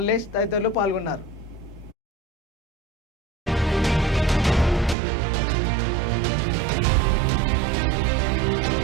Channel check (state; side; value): drops out; left; at 5.0 s